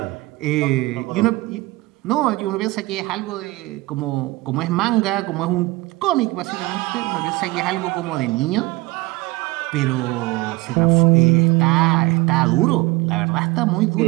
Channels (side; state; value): left; quieter; 21.0 dB